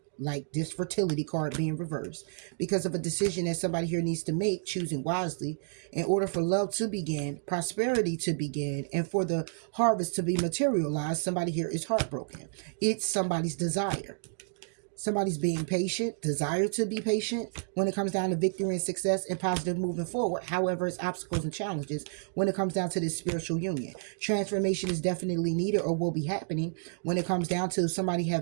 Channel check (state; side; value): silent; left; digital silence